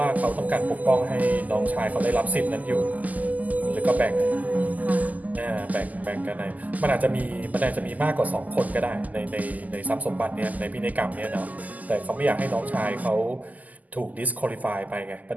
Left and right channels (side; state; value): left; late; 0.079 ms